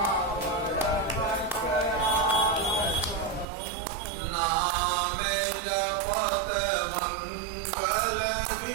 नाम जपत मंगल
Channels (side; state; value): left; drops out; at 3.5 s